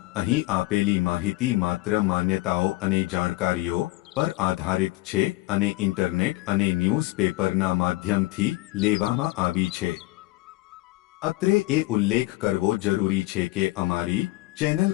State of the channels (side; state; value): right; quieter; 19.4 dB